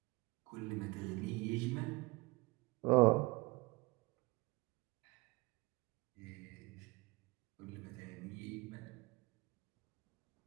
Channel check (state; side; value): quieter; left; 24.3 dB